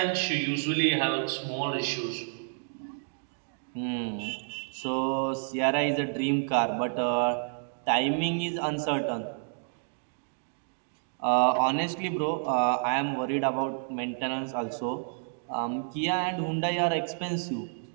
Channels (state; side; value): silent; left; digital silence